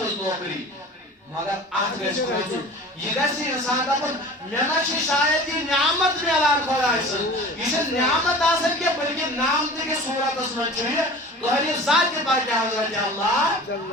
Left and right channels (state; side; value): normal; both; correlation 0.40